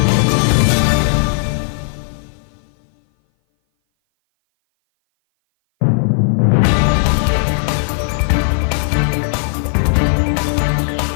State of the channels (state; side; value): silent; right; 59 dB below the other